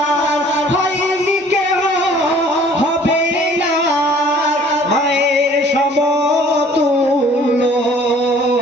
হয়নি কেউ হবে না মায়ের সমতুল্য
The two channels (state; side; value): normal; both; correlation 0.54